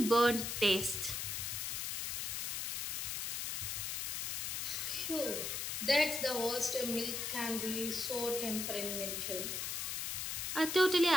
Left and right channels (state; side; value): noise; left; hiss, 2 dB below the sound